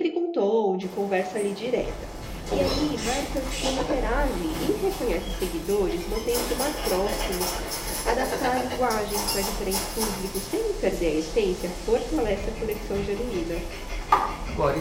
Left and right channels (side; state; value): both; identical; correlation 1.00